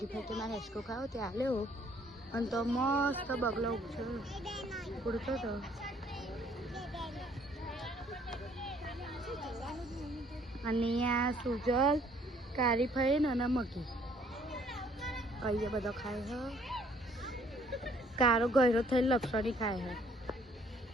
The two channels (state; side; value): normal; both; correlation 0.62